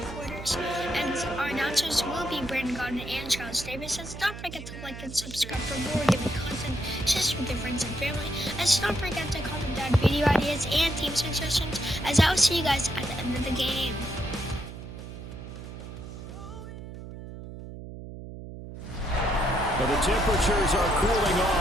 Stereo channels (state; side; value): noise; right; hum, 11 dB below the sound